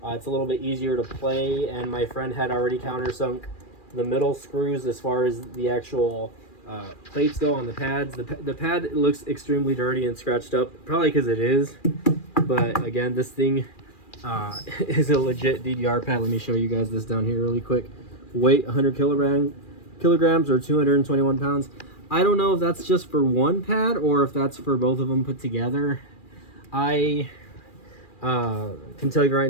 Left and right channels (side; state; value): right; late; 2.4 ms